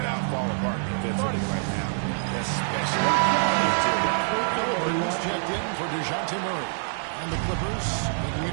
out fall apart defensively right now. Especially Halliburton's checked in for DeJounte Murray. And the Clippers making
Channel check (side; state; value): left; silent; digital silence